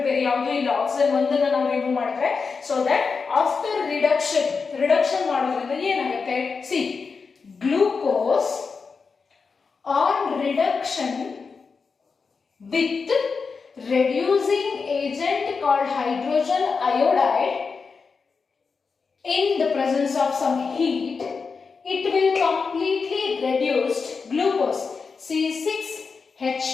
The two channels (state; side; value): quieter; right; 5.0 dB